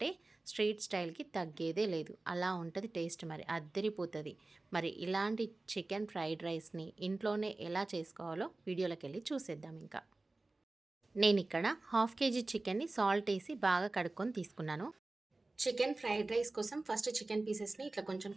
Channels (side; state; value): left; quieter; 3.1 dB